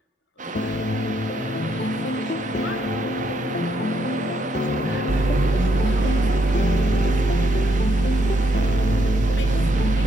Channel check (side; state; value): both; normal; correlation 0.75